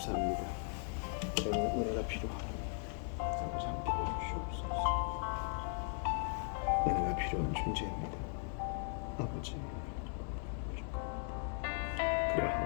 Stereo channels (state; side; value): silent; right; 52 dB below the other